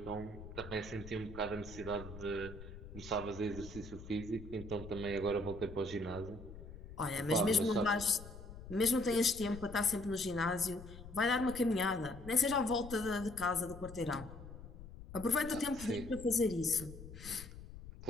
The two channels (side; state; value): left; noise; rumble, 13 dB below the sound